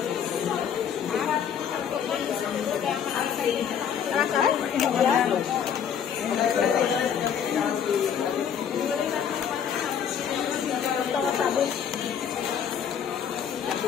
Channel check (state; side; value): quieter; right; 8.1 dB